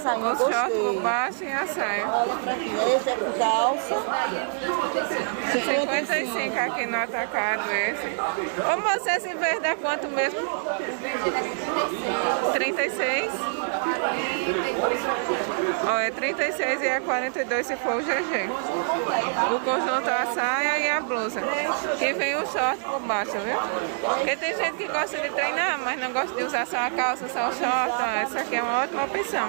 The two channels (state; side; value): silent; left; digital silence